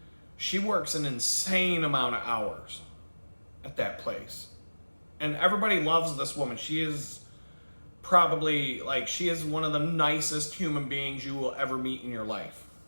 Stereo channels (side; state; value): both; inverted; correlation -1.00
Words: she works an insane amount of hours at that place. And everybody loves this woman. She is probably, she is one of the nicest human beings you will ever meet in your life.